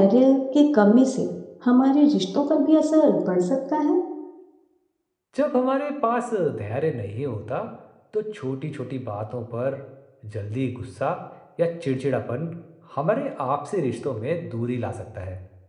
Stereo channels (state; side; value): identical; both; correlation 1.00